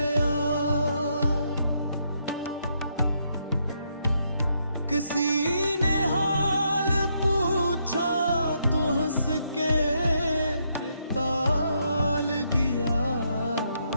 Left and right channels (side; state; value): both; inverted; correlation -0.76